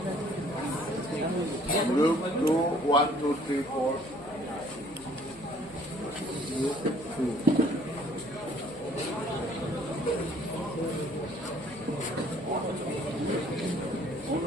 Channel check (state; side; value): noise; left; hum, 23 dB below the sound